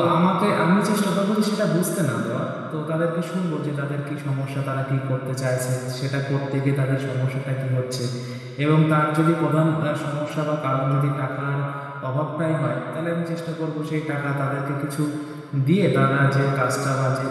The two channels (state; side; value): identical; both; correlation 1.00